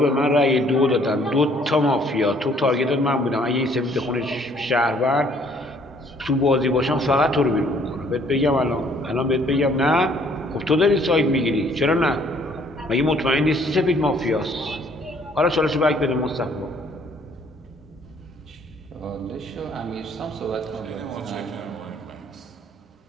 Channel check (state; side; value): normal; both; correlation 0.61